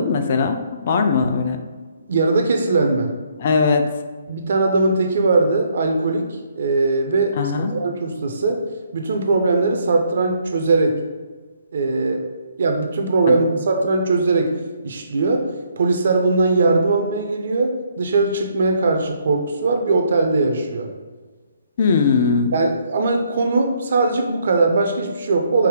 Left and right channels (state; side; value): inverted; both; correlation -0.70